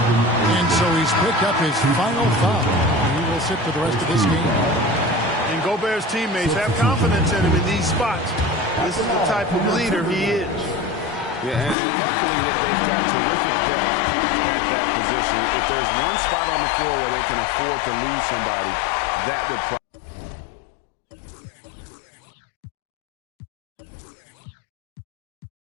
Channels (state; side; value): drops out; right; at 11.8 s